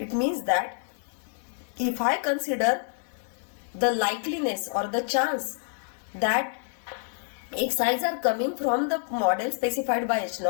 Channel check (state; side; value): silent; right; digital silence